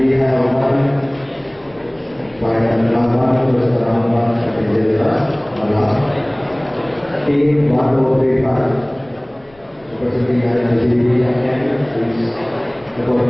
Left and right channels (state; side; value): noise; left; rumble, 29 dB below the sound